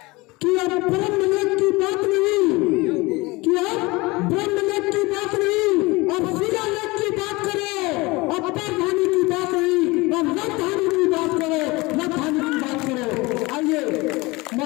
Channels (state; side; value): quieter; right; 23.2 dB